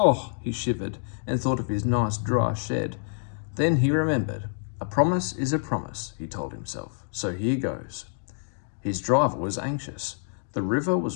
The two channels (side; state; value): right; silent; digital silence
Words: he shivered and thought of his nice dry shed. Then he remembered. "A promise is a promise," he told himself. "So here goes." His driver was anxious. The river